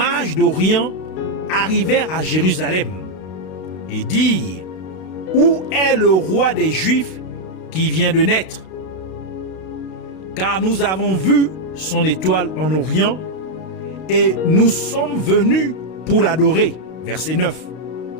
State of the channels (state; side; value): late; right; 32 ms